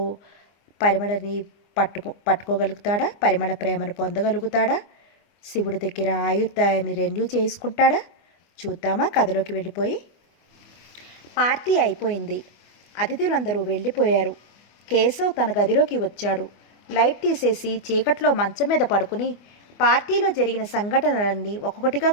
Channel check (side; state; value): right; late; 24 ms